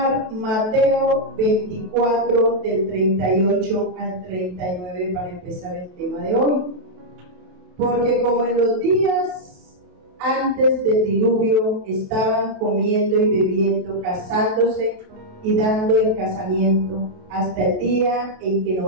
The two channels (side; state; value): left; late; 28 ms